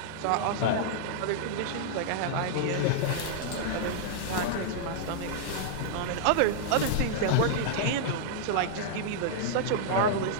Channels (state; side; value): different; both; correlation -0.01